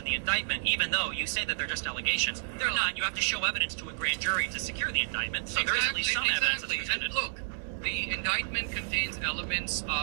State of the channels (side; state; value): left; silent; 57 dB below the other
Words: the indictment, even though you say that they're just allegations. They're not. You have to show evidence to a grand jury to secure the indictment, so there is at least some evidence that's presented. And look, the indictment contains elements